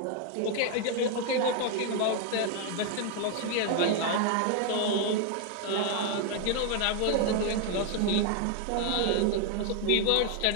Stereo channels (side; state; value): both; different; correlation 0.00